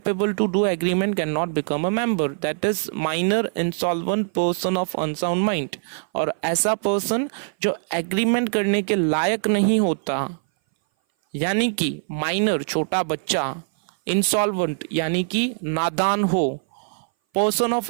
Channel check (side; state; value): left; silent; 59 dB below the other